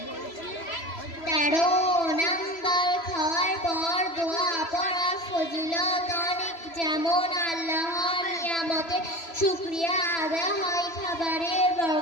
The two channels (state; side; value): late; right; 3.0 ms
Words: 13 নাম্বার, খাওয়ার পর দোয়া পড়া ফজিলত অনেক, যেমন আল্লাহর নিয়ামতে শুকরিয়া আদায় হয়, খাবারের